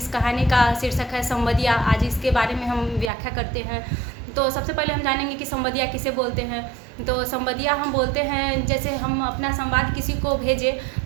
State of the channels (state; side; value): drops out; left; at 3.1 s